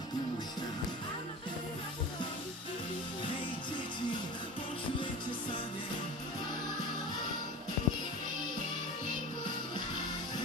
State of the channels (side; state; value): both; normal; correlation 0.33